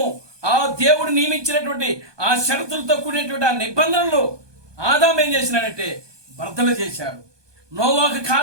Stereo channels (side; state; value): left; late; 1.2 ms